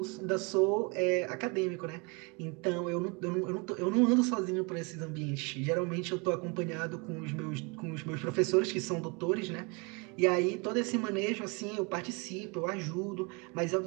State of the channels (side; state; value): left; quieter; 30.7 dB